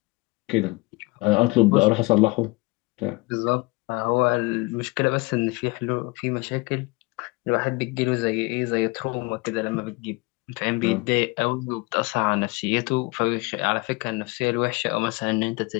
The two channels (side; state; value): right; quieter; 25.0 dB